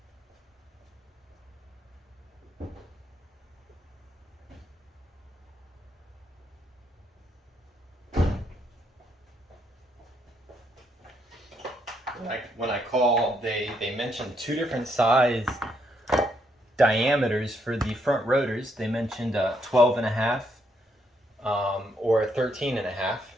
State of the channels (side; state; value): both; normal; correlation 0.75